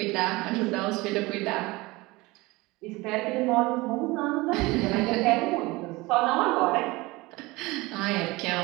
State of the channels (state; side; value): quieter; left; 22.0 dB